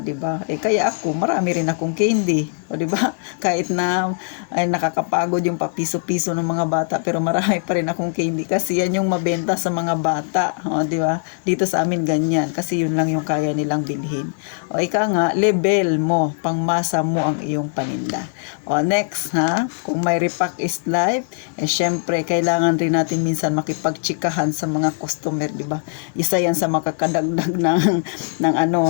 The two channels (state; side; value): silent; right; digital silence